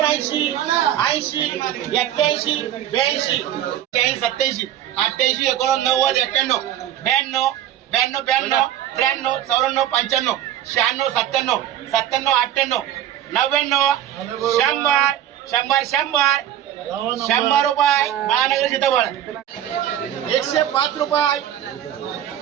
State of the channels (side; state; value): left; quieter; 11.3 dB